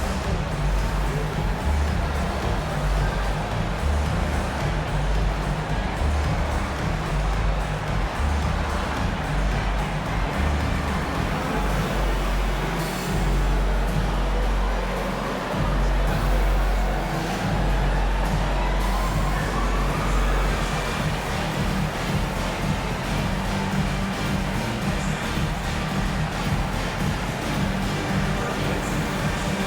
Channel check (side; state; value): both; identical; correlation 1.00